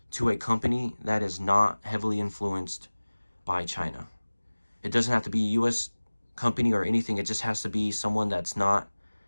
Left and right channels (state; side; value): inverted; both; correlation -1.00